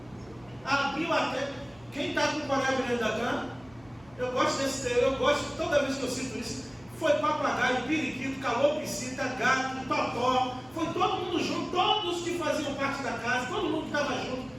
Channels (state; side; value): noise; right; hum, 26 dB below the sound